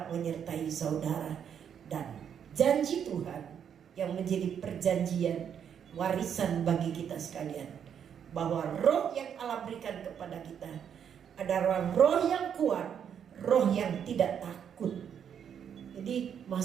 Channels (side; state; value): left; quieter; 8.3 dB